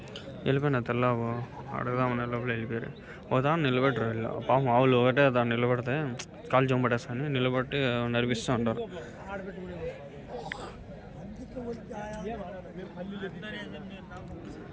వెళ్ళిపోయినా తెల్ల అడుగుదామని లోపల వెళ్ళిపోయారు. ఒక దాన్ని నిలబెట్టరు వీళ్ళు. పాపం ఆవులు ఒకటే దాన్ని నిలబెడితే కాలు చంపడేస్తాను నిలబెట్టి నడిపిస్తూ ఉంటారు.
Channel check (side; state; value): both; identical; correlation 1.00